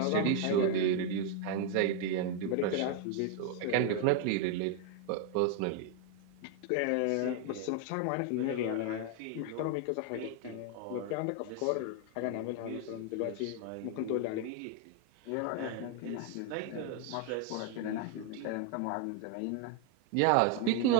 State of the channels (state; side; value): different; both; correlation 0.01